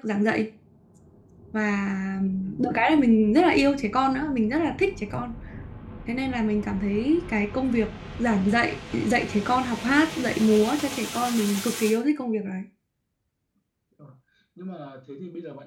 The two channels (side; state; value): both; identical; correlation 1.00